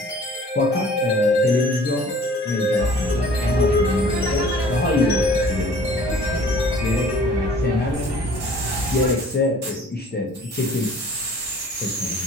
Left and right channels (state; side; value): normal; both; correlation 0.51